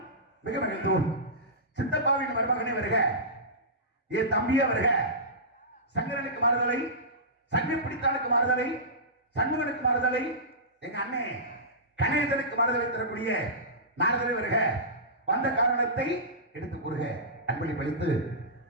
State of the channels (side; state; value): both; normal; correlation -0.19